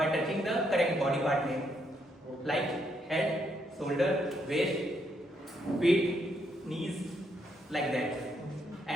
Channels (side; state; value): both; normal; correlation 0.76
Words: touching the correct body part name like head, shoulder, waist, feet, knees, like that.